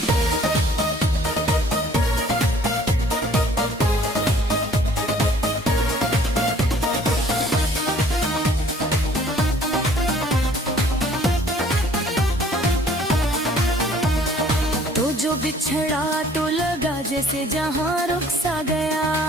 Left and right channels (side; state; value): both; normal; correlation 0.56